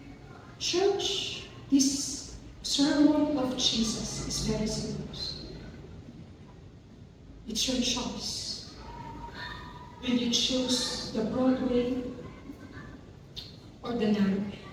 Church, this sermon of Jesus is very serious. It's your choice. Will you choose the broad way or the narrow way?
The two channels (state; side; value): identical; both; correlation 1.00